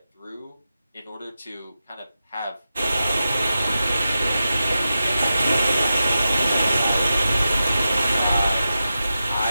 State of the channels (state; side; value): inverted; both; correlation -0.91